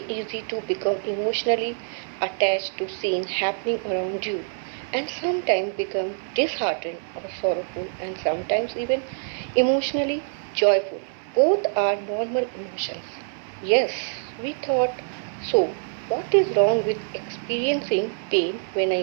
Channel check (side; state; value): left; silent; digital silence